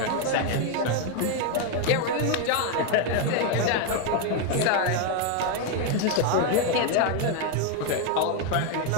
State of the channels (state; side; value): different; both; correlation 0.01